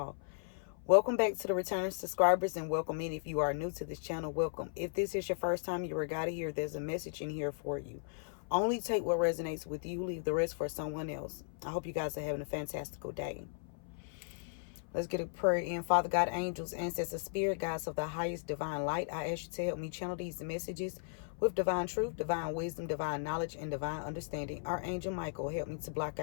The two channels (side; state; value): right; silent; 54 dB below the other